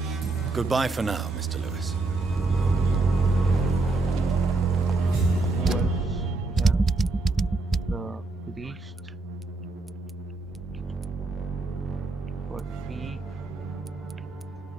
Goodbye for now, Mr. Lewis. The priest got 3.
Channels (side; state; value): left; quieter; 3.3 dB